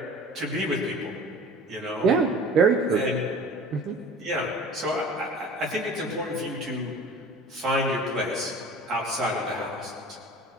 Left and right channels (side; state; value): both; normal; correlation 0.42